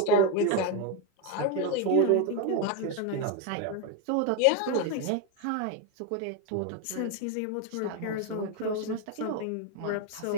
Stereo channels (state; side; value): different; both; correlation 0.02